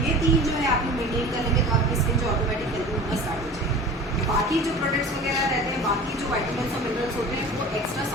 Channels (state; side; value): normal; both; correlation 0.39